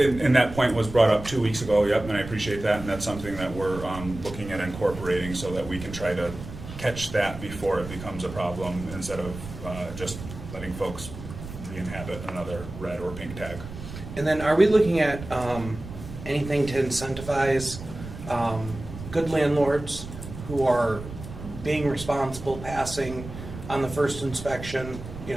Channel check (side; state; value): right; noise; rumble, 11 dB below the sound